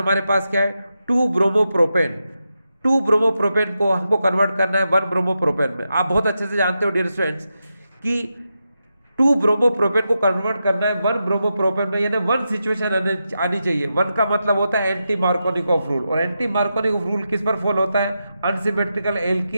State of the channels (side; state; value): both; inverted; correlation -0.88